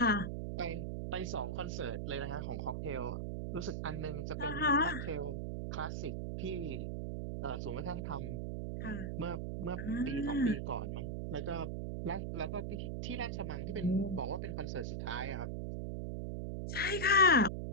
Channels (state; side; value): noise; right; hum, 3 dB below the sound